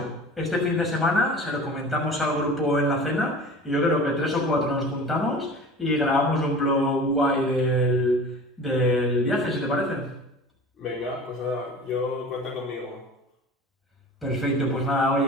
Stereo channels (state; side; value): normal; both; correlation 0.39